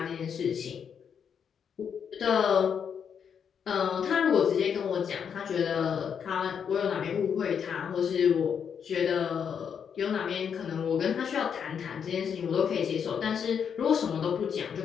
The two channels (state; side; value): quieter; right; 7.4 dB